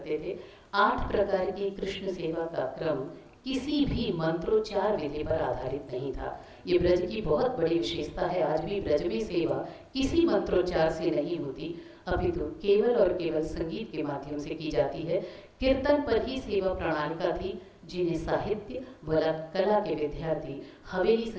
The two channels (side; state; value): both; identical; correlation 1.00